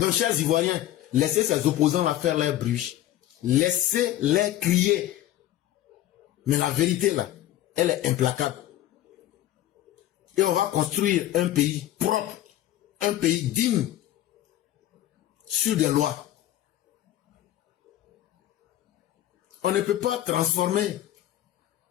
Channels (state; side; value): quieter; right; 13.6 dB